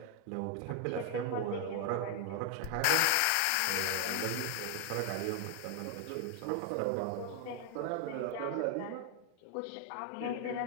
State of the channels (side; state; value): both; different; correlation 0.00